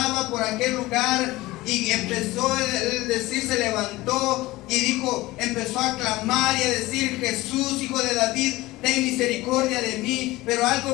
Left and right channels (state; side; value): quieter; right; 19.0 dB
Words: por aquel lugar y empezó a decir, se levantó y dijo, empezó a clamar y a decir: Jesús, hijo de David, ten misericordia de mí. Pero